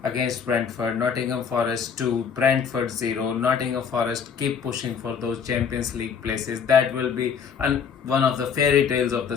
against Brentford. Nottingham Forest 2, Brentford 0. Nottingham Forest keep pushing for those Champions League places. That will be one of the fairy tales of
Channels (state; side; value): quieter; right; 6.7 dB